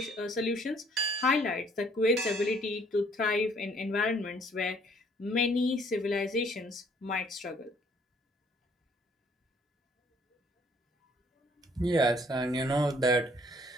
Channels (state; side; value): normal; both; correlation 0.62